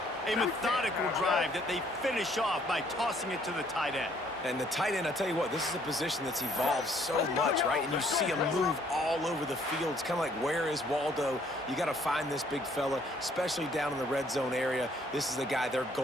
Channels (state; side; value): normal; both; correlation 0.64